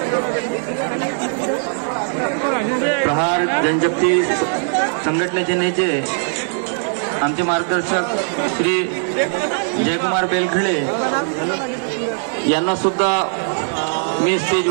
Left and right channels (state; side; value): silent; left; digital silence